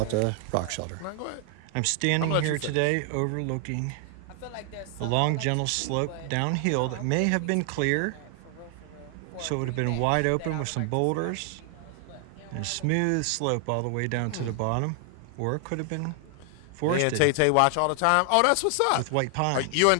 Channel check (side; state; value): both; different; correlation 0.00